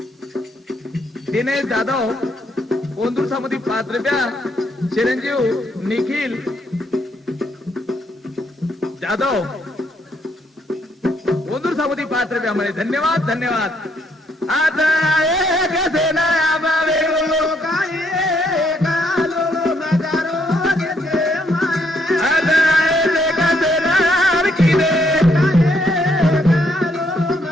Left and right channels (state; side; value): normal; both; correlation 0.72